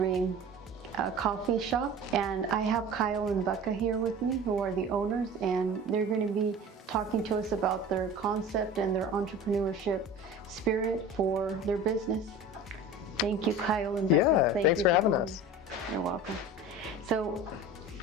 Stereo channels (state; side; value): normal; both; correlation 0.37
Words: Coffee Shop, and I have Kyle and Becca here with me, who are the owners, and they're going to be talking to us about their concept and their entrepreneurship spirit for their business. Thank you, Kyle and Becca. Yeah, thanks for having us. You're welcome. So